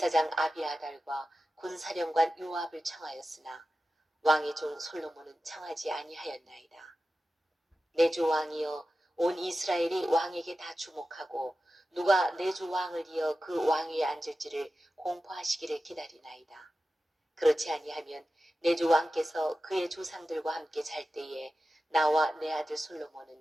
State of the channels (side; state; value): both; normal; correlation 0.93